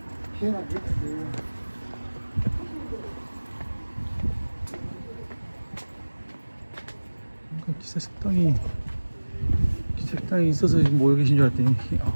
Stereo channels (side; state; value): both; inverted; correlation -1.00